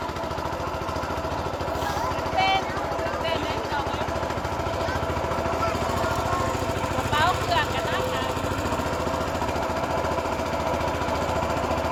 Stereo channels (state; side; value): identical; both; correlation 1.00